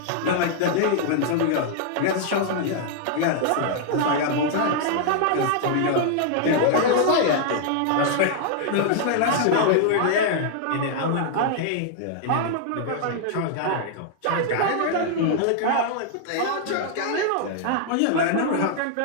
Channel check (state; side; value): different; both; correlation -0.01